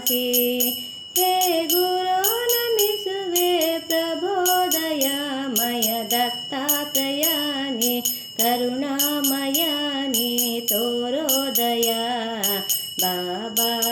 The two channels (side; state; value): both; identical; correlation 1.00